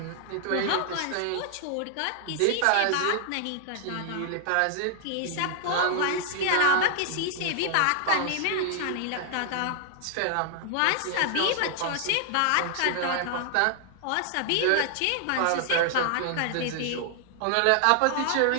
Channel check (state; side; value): different; both; correlation 0.00